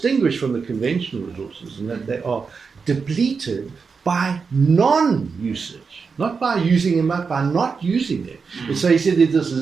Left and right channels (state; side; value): quieter; left; 5.2 dB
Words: from the conventional resources, and that they are depleted by non-usage. Not by using them, but by not using them. And so he said there's this